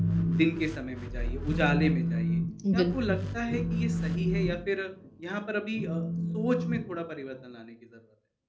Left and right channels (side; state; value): both; identical; correlation 1.00